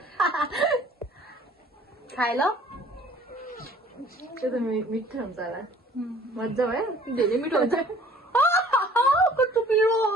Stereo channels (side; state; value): both; normal; correlation 0.53